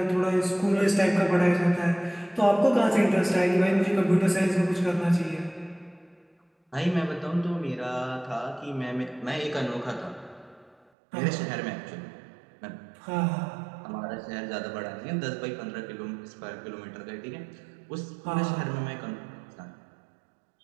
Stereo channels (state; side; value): drops out; left; at 10.8 s